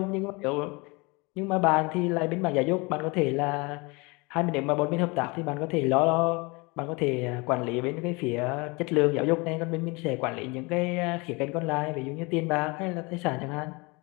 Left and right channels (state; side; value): quieter; right; 27.1 dB